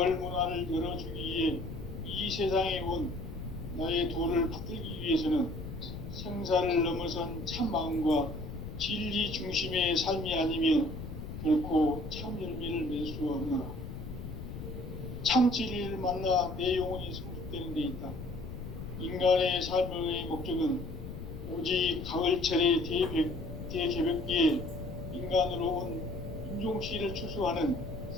문화를 열어주기 위해 이 세상에 온 나의 도를 받들기 위해서는 생사를 넘어선 참 마음과 진리 중심의 삶이 아니면 결코 참 열매를 맺을 수 없노라. 참 진리를 만나 내 영혼이 성숙되는 데 있다. 인간의 삶의 목적은 오직 가을철의 대개벽기에 인간으로 온 인종씨를 추수하는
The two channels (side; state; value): left; noise; rumble, 9 dB below the sound